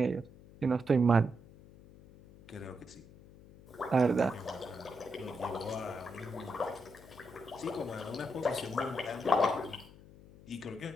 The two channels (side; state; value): left; noise; hum, 21 dB below the sound